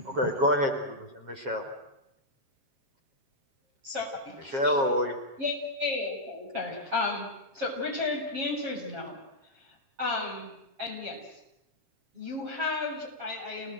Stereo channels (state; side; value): late; left; 7.4 ms